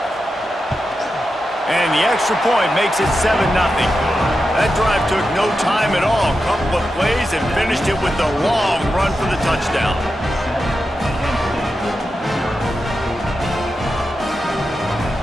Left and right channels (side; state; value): both; normal; correlation 0.89